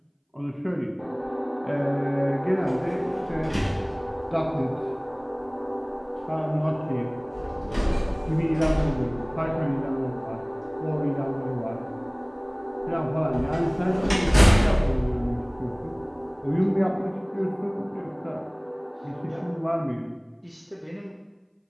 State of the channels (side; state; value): both; identical; correlation 1.00